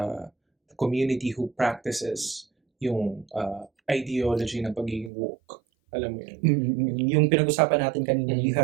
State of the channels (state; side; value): drops out; left; at 5.1 s